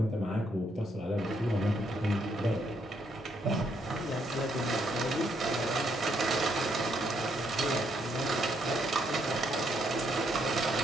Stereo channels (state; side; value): normal; both; correlation 0.74